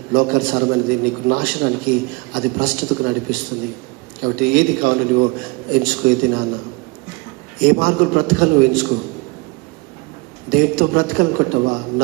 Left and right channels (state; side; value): quieter; left; 26.3 dB